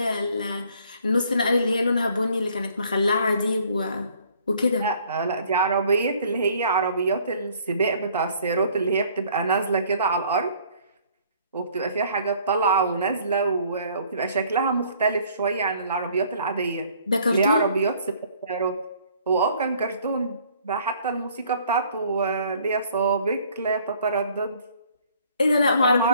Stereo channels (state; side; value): inverted; both; correlation -0.59